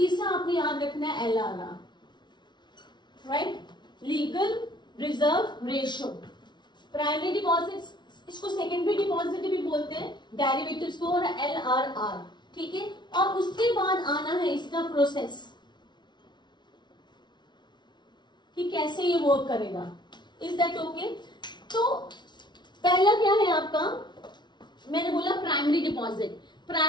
आपने याद रखना है LRR, right. Legal reserve ratio. Primary deposit, इसको सेकेंडरी डिपॉजिट भी बोलते हैं, डेरिवेटिव्स को, और LRR, ठीक है. और उसके बाद आना है इसका प्रोसेस कि कैसे ये वर्क करेगा. Is that okay? तो पहला क्या है आपका? मैंने बोला प्राइमरी डिपॉजिट.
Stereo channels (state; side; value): late; right; 0.21 ms